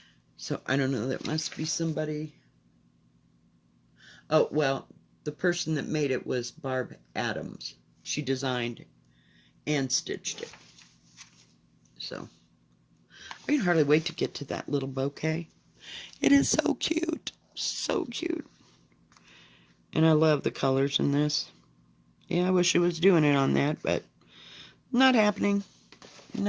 So I don't know, that must be somebody. Oh, well, the person that made it was Barb Adams. She designed and stitched it. So I can hardly wait to get to that little bouquet. It is so cute. So cute. And I love the colors in this. Yeah, I wish it was doing it on that, but not happening.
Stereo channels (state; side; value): identical; both; correlation 1.00